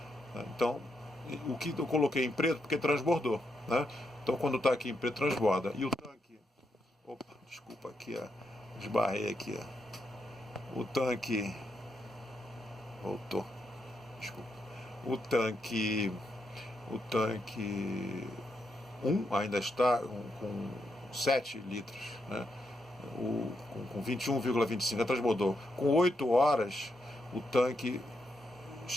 Então, o que eu coloquei em preto porque transbordou, né? Então quando está aqui em preto transborda. E o tanque, opa, desculpa aqui, esbarrei aqui, o tanque, voltou, desculpa, o tanque 1 ainda está com 7 litros, né? Com 21,25 transbordou. Com 8 horas o tanque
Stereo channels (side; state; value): both; normal; correlation 0.82